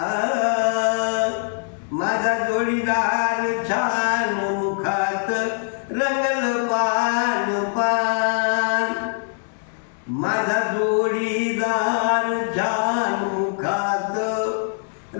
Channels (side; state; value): right; silent; digital silence